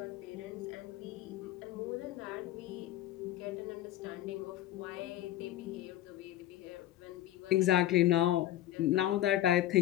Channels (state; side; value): quieter; right; 13.5 dB